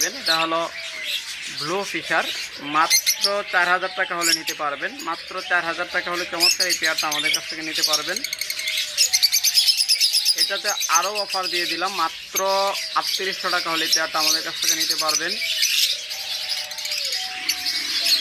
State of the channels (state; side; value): identical; both; correlation 1.00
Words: এটা হলো ব্লু ফিশার, মাত্র 4000 টাকা হলে নিতে পারবেন। মাত্র 4000 টাকা হলে চমৎকার এই পেয়ারটা আমাদের কাছ থেকে নিতে পারবেন। এটাতে আরও অফার দিয়ে দিলাম, মাত্র 3800 টাকা হলে এই পেয়ারটা আমাদের কাছ থেকে নিতে পারবেন।